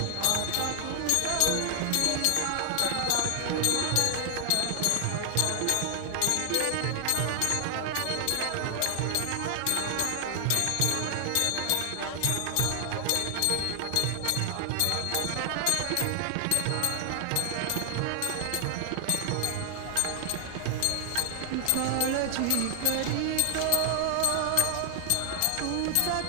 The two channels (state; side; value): different; both; correlation 0.00